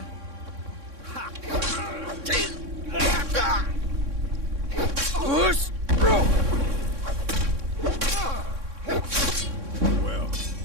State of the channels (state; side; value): late; left; 3.6 ms